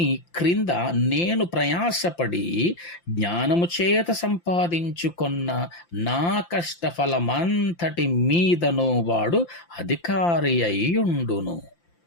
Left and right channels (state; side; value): late; right; 5.8 ms